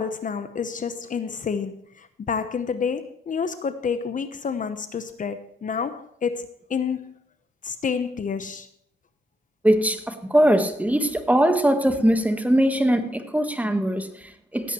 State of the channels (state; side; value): normal; both; correlation 0.79